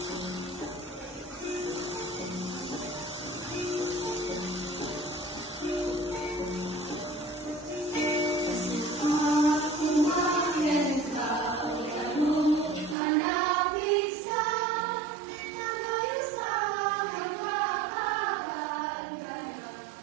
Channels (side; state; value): left; drops out; at 13.0 s